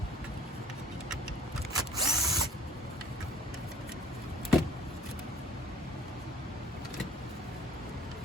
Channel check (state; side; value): normal; both; correlation 0.52